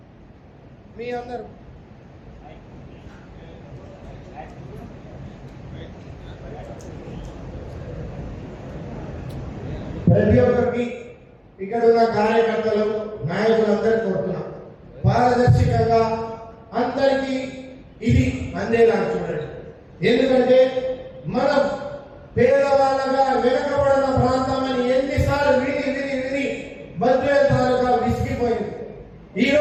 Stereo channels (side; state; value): both; identical; correlation 1.00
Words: మీ అందరూ ప్రతి ఒక్కరికి ఇక్కడ ఉన్న కార్యకర్తలు నాయకులందరూ కోరుతున్నాం పారదర్శకంగా అందరికీ ఇది అందేలా చూడండి. ఎందుకంటే మనం పేదవాళ్ళగా వెనకబడిన ప్రాంతం అని ఎన్నిసార్లు విని బద్వేల్ తాలూకా విసిగిపోయింది.